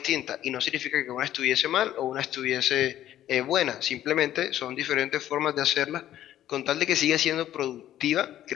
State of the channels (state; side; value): quieter; right; 12.3 dB